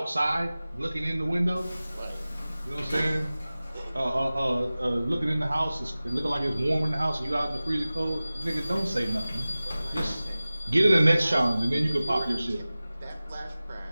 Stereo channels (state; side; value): inverted; both; correlation -0.97